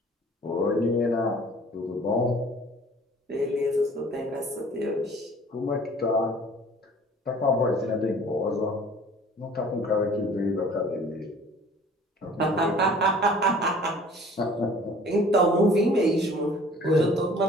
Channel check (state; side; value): normal; both; correlation 0.50